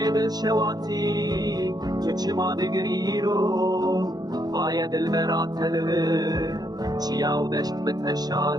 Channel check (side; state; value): left; late; 0.19 ms